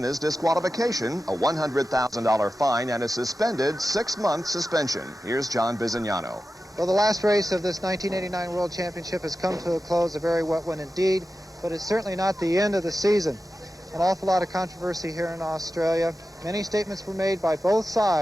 disqualification, a $100,000 fine, and a suspended 6-month suspension. Here's John Bizignano. Well, the last race of this 1989 World Championship has come to a close, a very wet one indeed, but it's certainly not the end of the season. An awful lot of controversy here in Australia. Many statements were made by both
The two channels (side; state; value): both; normal; correlation 0.92